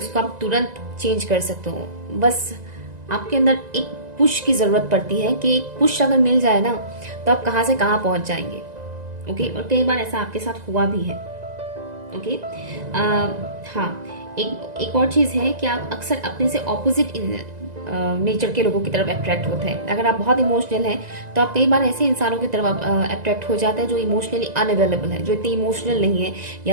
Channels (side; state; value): left; late; 2.0 ms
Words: आप तुरंत चेंज कर सकते हो। बस आपके अंदर एक पुश की जरूरत पड़ती है कि एक पुश अगर मिल जाए ना, तो आप कहाँ से कहाँ पहुंच जाएंगे। ओके, और कई बार ऐसा आपके साथ हुआ भी है। ओके, हाँ, एक और चीज़ है कि आप अक्सर अपने से ऑपोजिट नेचर के लोगों की तरफ अट्रैक्ट होते हैं। अगर आप बहुत इमोशनल हैं तो आप कई बार ऐसे इंसानों की तरफ अट्रैक्ट हो जाते हैं जो इमोशनली अनअवेलेबल है, जो इतनी इमोशनल नहीं है